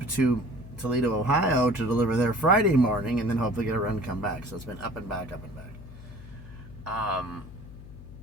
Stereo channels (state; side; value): noise; left; hum, 15 dB below the sound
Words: to Toledo, Ohio to deliver there Friday morning and then hopefully get a run and come back. So it's been up and back, up and back.